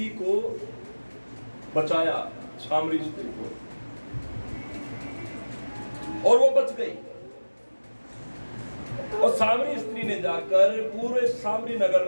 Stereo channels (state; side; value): inverted; both; correlation -1.00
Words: को बचाया, सामरी स्त्री को, और वो बच गई। और सामरी स्त्री ने जाकर पूरे सामरी नगर